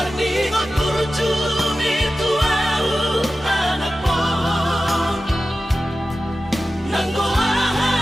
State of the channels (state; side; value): normal; both; correlation 0.94